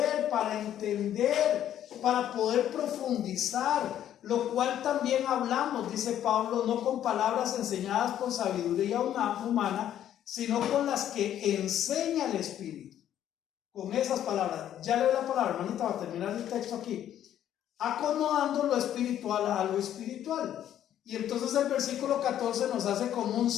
para entender, para poder profundizar, lo cual también hablamos, dice Pablo, no con palabras enseñadas por sabiduría humana, sino con las que enseña el Espíritu. Con esas palabras, ya leo la palabra, hermanita, va a terminar el texto aquí, acomodando lo espiritual a lo espiritual. Y entonces el versículo 14 nos hace como un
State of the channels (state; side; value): quieter; right; 11.0 dB